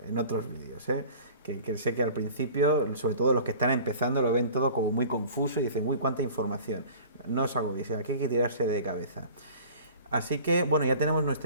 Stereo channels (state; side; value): inverted; both; correlation -0.44